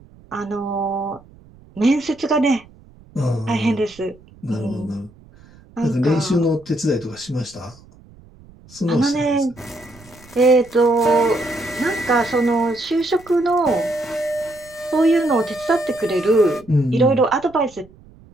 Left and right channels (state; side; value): noise; right; rumble, 25 dB below the sound